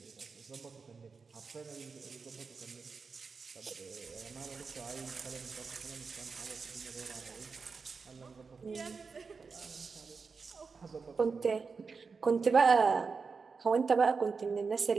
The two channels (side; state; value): left; quieter; 4.9 dB